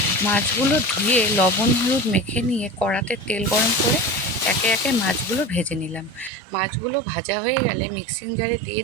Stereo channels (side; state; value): left; drops out; at 6.3 s